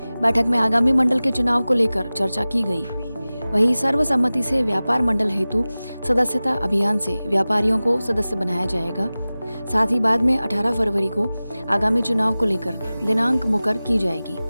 बैठक में आगामी मंडल के चुनाव को लेकर चर्चा की गई। वहीं सर्वसम्मति से व्यापार मंडल हेतु सदस्यता अभियान से व्यापारियों को सदस्य बनाया जाएगा। साथ ही बाद में 18 फरवरी को आगामी चुनाव को लेकर दिनांक मुकर की जाएगी।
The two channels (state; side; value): inverted; both; correlation -0.97